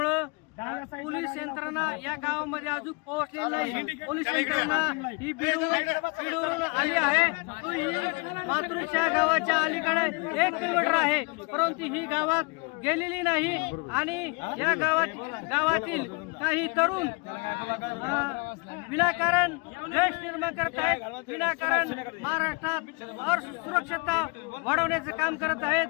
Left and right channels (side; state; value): right; quieter; 31.1 dB